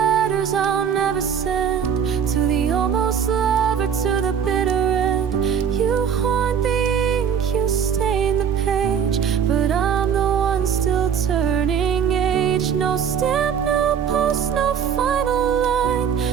letters I'll never send, to the almost lover, to the bitter end. You haunt the ink, you stain the page, but I'm the one still turning age. No stamp, no post, no final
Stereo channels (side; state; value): left; quieter; 7.8 dB